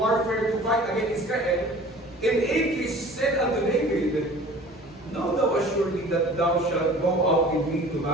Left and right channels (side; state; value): both; normal; correlation 0.45